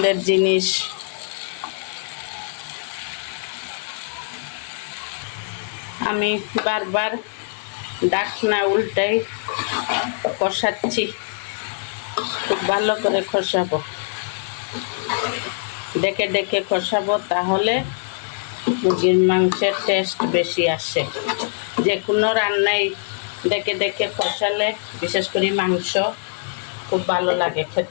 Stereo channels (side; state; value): right; silent; digital silence